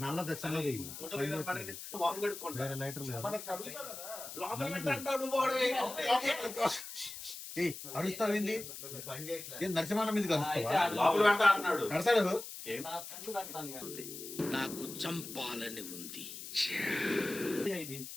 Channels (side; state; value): left; noise; hiss, 10 dB below the sound